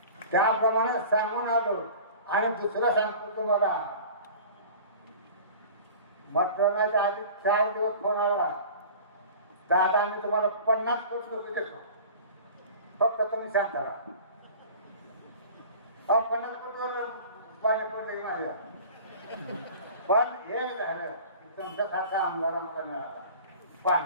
त्याप्रमाणे सांगून आलो. आणि दुसरं सांगतो तुम्हाला मतदानाच्या आधी 4 दिवस फोन आला दादा मी तुम्हाला 50 कोटी रुपये देतो फक्त तुम्ही सांग करा. 50 कोटीवर पाणी पडले माझ्या. पण हे झालं की तुमच्यासारखा आमदारांना मिळाला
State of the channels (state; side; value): inverted; both; correlation -0.41